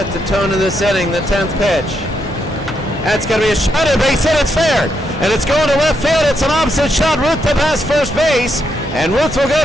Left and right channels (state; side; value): normal; both; correlation 0.79